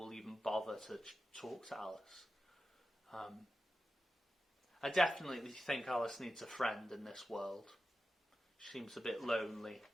even bother to talk to Alice. I definitely think Alice needs a friend in this world. She seems a bit lonely.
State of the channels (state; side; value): normal; both; correlation 0.92